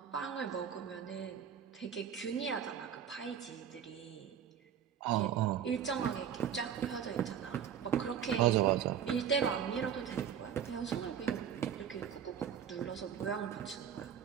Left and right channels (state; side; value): quieter; left; 8.7 dB